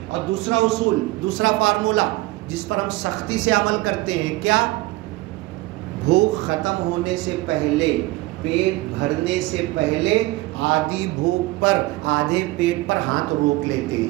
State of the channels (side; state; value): left; quieter; 19.7 dB